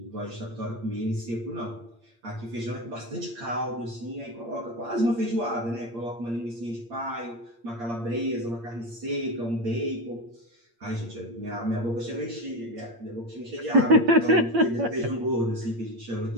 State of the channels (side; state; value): left; late; 8.6 ms